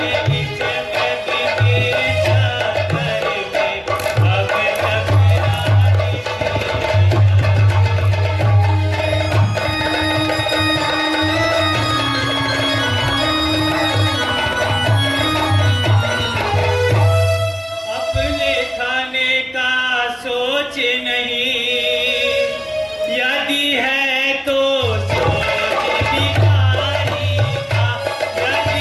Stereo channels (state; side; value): identical; both; correlation 1.00